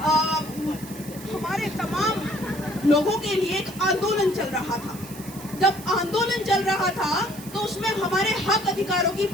हमारे तमाम लोगों के लिए एक आंदोलन चल रहा था। जब आंदोलन चल रहा था तो उसमें हमारे हक अधिकारों की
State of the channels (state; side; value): noise; right; hiss, 16 dB below the sound